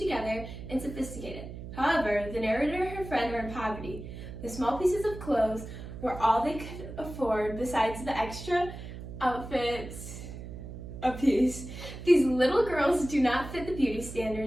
and sophisticated. However, the narrator and her friend were in poverty. The small pieces of clothes were all they could afford besides the extra outfits a piece. These little girls do not fit the beauty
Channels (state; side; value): noise; right; hum, 11 dB below the sound